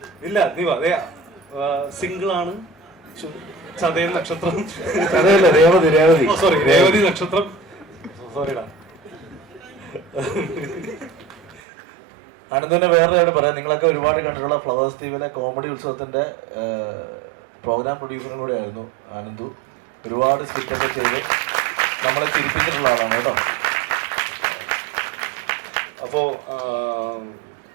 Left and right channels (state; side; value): drops out; left; at 11.6 s